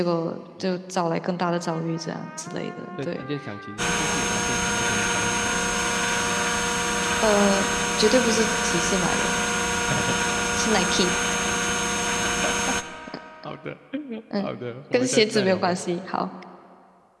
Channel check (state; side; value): identical; both; correlation 1.00